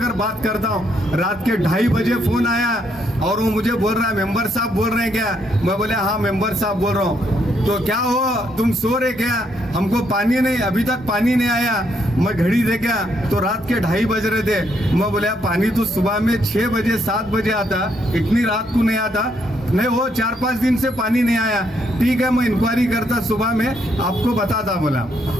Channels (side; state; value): both; normal; correlation 0.74